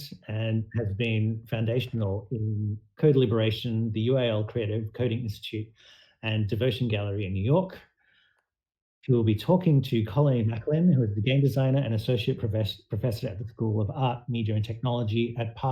and has been foundational in Code Liberation, the UAL Creative Coding Institute, and Devotion Gallery in New York. She will be talking to Colleen Macklin, who is the game designer and associate professor at the School of Art, Media and Technology at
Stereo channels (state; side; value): identical; both; correlation 1.00